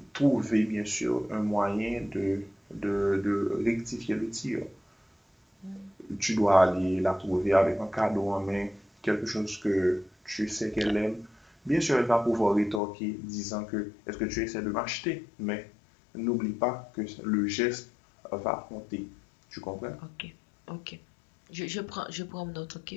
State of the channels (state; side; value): drops out; right; at 12.8 s